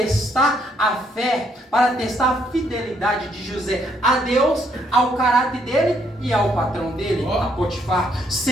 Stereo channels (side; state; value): both; normal; correlation 0.71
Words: a fé, para testar a fidelidade de José a Deus, ao caráter dele e ao patrão dele, a Potifar.